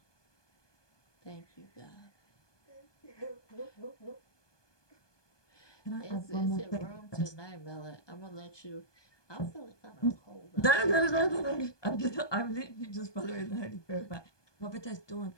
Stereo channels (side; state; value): right; late; 1.2 ms